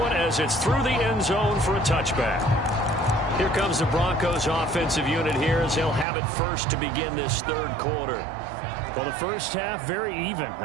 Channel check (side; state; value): left; drops out; at 6.1 s